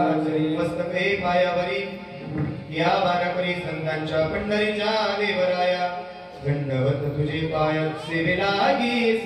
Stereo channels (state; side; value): identical; both; correlation 1.00